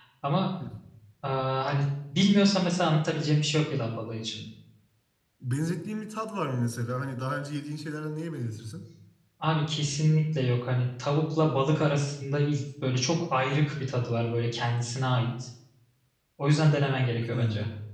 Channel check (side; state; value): both; identical; correlation 1.00